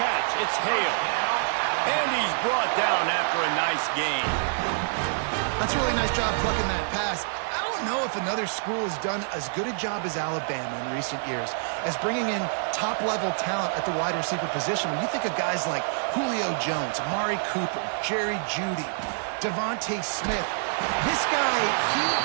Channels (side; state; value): left; silent; digital silence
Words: it's Hale. And he's brought down after a nice gain. That's a really nice job plucking that pass. I don't know if another school has done as good a job as Alabama in recent years as bringing in top-level talent at the wide receiver position. When you think of guys like Julio Jones, Amari Cooper, Jerry Jeudy, Devontae Smith, this guy, he